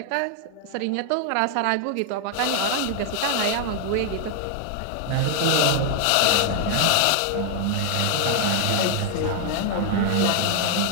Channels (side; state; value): both; different; correlation 0.00